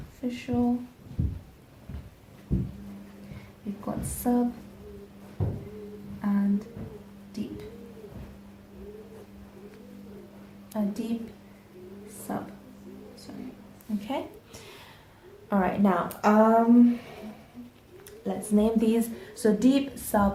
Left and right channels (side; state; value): both; identical; correlation 1.00